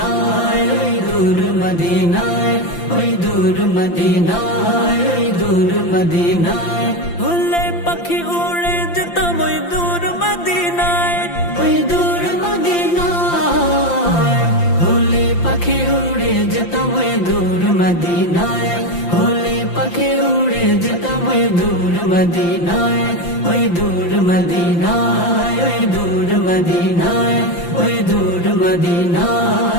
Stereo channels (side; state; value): right; late; 5.8 ms